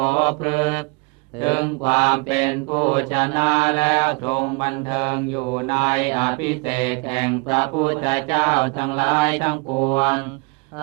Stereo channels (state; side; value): quieter; left; 30.6 dB